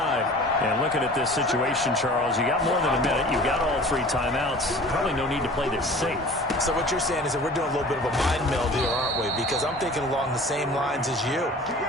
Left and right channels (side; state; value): both; normal; correlation 0.44